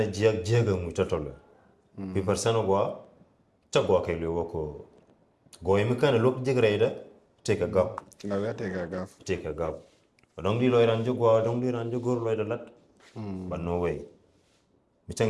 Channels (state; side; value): identical; both; correlation 1.00